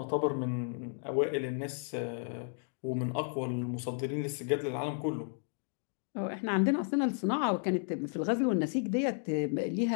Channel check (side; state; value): right; silent; 56 dB below the other